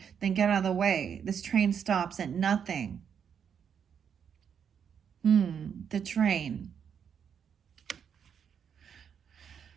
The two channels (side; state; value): left; quieter; 7.6 dB